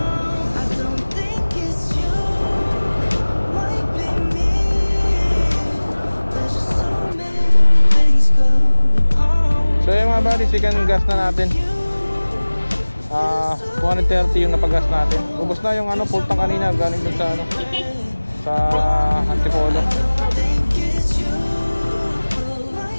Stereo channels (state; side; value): inverted; both; correlation -1.00